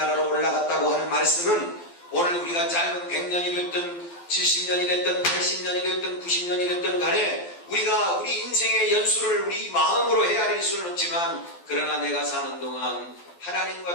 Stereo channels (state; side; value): late; right; 12 ms